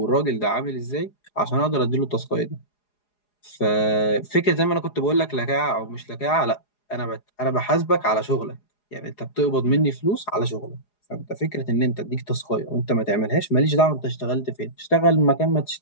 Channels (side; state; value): right; late; 4.8 ms